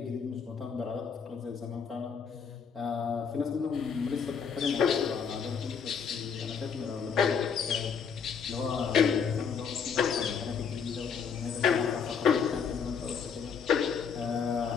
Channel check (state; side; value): quieter; right; 6.4 dB